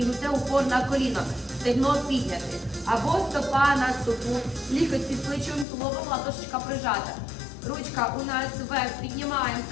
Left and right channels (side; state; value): right; drops out; at 5.7 s